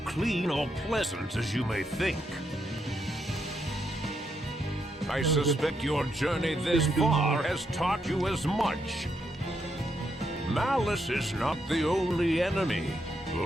clean or pleasant as you may think. I suspect your journey this far has taught you as much. Malice is not the only enemy.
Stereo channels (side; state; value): both; normal; correlation 0.80